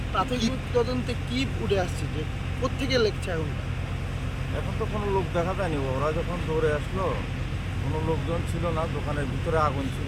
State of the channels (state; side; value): identical; both; correlation 1.00